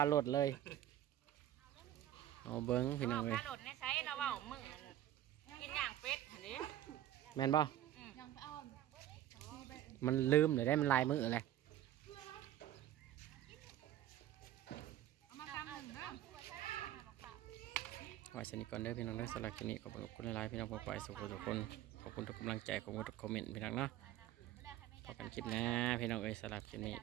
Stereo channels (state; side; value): quieter; left; 12.4 dB